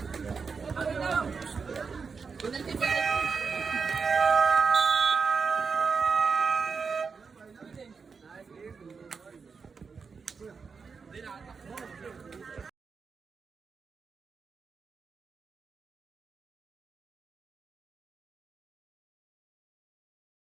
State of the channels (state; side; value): quieter; left; 5.3 dB